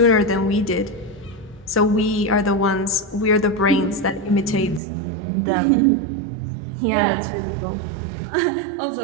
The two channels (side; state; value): left; drops out; at 4.8 s